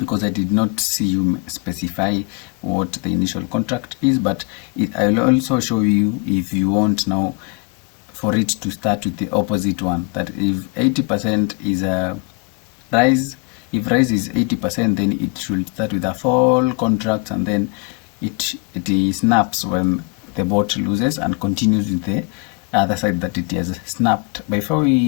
I did not see you specify what the initial contract is, but I'll also show you if you want now for it to start with the opposite one, that if 80% is a rise, if rise is 80%, then it should start with a fall contract, and then it snaps when the bot loses and continues with the other side that it has snapped. Before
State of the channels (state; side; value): quieter; right; 29.4 dB